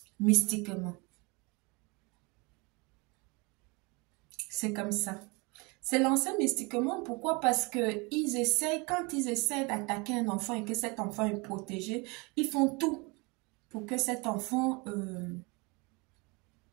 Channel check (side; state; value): left; quieter; 28.1 dB